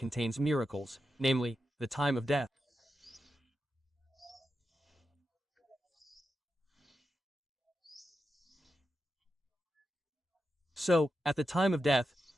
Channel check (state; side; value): normal; both; correlation 0.89